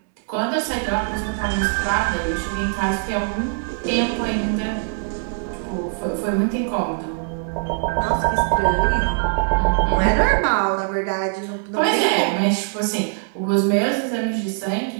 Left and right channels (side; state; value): left; silent; 64 dB below the other